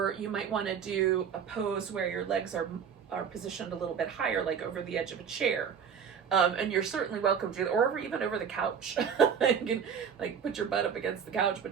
you might want to do a pose where your legs are positioned a little bit higher, like over the edge of a chair. And you're certainly welcome to, or even over the couch. You can like put your butt up against the couch,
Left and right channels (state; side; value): quieter; left; 7.3 dB